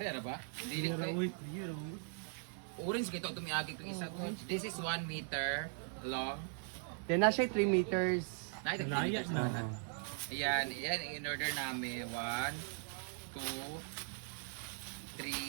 na ba? Hindi orange kito tumiagi itong isa ko. This is 1 meter long. Then na siya 3 meters. Laya na. Ayan, in order namin. 1, 2,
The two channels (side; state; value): left; silent; 51 dB below the other